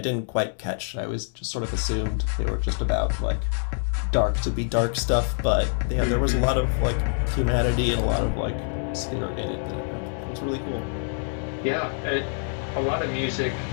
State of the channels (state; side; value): silent; right; 61 dB below the other